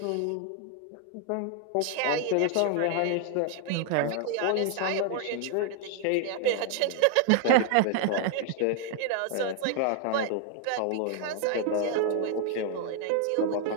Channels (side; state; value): both; different; correlation 0.00